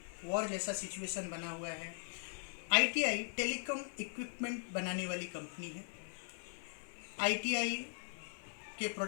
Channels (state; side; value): silent; right; digital silence